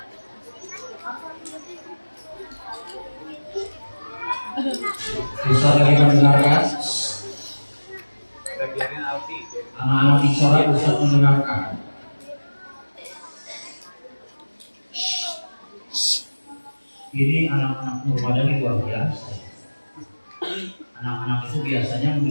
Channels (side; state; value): both; inverted; correlation -1.00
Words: bisa lagi mendengarkan. Anak-anak bicara bisa mendengarkan. Ini anak-anak Nur Madani luar biasa. Anak-anak itu biasanya